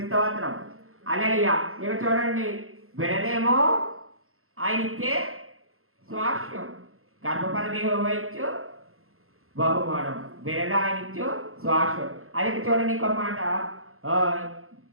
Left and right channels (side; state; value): left; late; 0.62 ms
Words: స్తోత్రం. హల్లెలూయా. ఇక చూడండి, బిడలేమో ఆయన ఇచ్చే స్వాస్థ్యం, గర్భఫలం యెహోవా ఇచ్చు బహుమానం, బిడలు ఆయన ఇచ్చు స్వాస్థ్యం. అది చూడండి, ఇంకొక మాట,